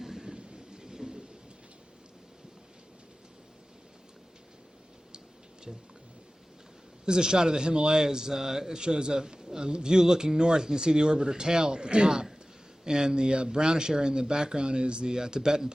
This is a shot of the Himalayas. It shows a view looking north. You can see the orbiter tail at the top, and the brownish area in the background is the Tibetan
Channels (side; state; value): both; normal; correlation 0.97